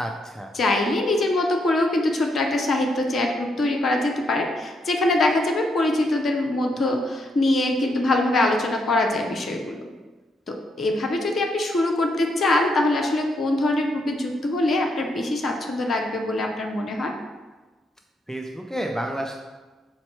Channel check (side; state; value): both; normal; correlation 0.77